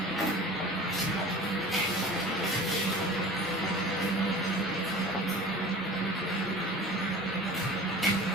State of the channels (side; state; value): both; normal; correlation 0.40